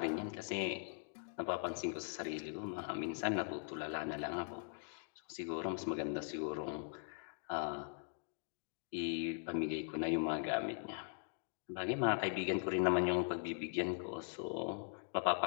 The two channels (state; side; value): silent; right; 50 dB below the other